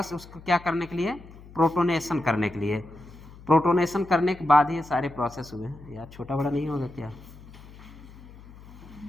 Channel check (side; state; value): left; noise; hum, 19 dB below the sound